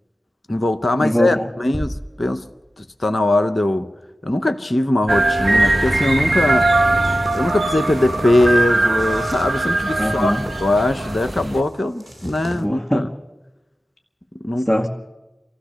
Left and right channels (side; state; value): both; normal; correlation 0.94